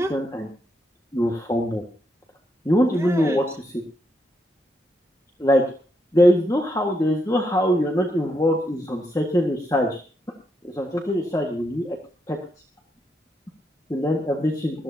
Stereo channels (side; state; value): both; normal; correlation 0.80